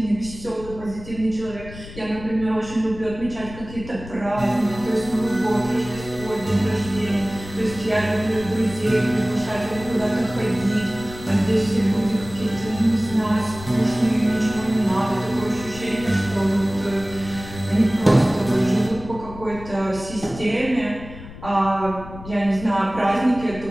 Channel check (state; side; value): noise; left; rumble, 14 dB below the sound